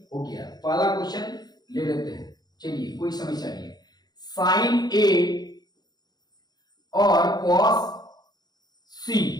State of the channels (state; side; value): late; right; 0.20 ms